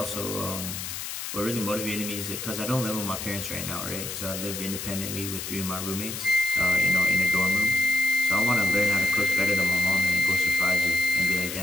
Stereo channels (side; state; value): left; noise; hiss, 6 dB below the sound